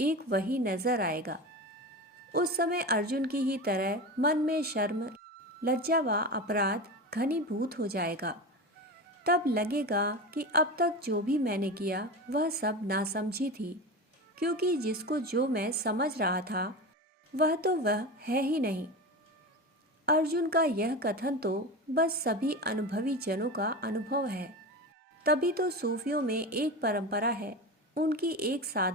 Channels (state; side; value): normal; both; correlation 0.25